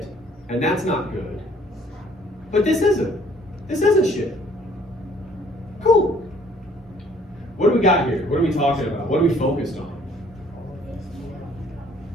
and that's not good. But this isn't. This isn't shit. Cool. What do we got here? What are we talking about? What are we focused on?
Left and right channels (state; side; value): normal; both; correlation 0.60